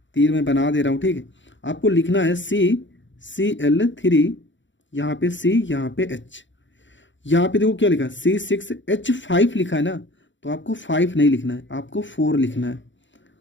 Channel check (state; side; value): late; right; 0.54 ms